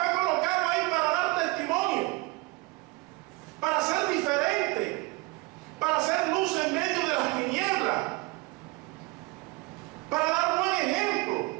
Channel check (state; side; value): quieter; left; 24.4 dB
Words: colocado ahí para dar testimonio, para ser diferente, para ser luz en medio de las tinieblas, para dar buen ejemplo.